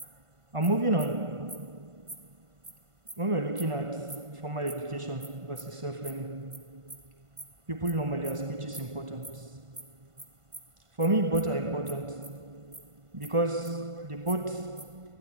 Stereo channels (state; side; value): late; left; 1.5 ms